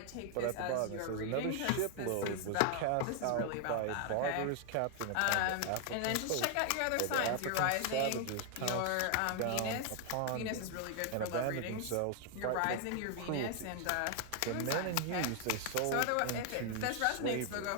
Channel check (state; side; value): different; both; correlation 0.00